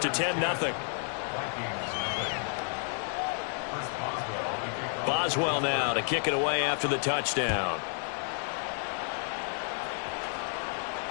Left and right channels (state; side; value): silent; right; 57 dB below the other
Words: 10-0. Boswell now to kick it away after the touchdown.